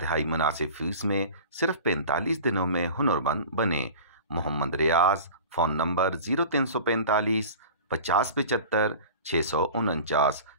مناسب فیس میں صرف 45 دنوں میں ہنرمند بنیں۔ محمد ریاض، فون نمبر 0345 5075 649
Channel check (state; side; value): inverted; both; correlation -0.38